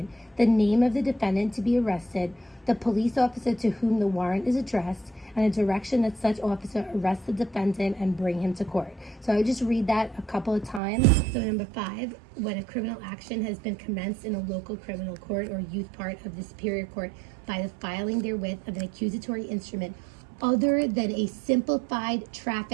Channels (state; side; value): drops out; left; at 10.8 s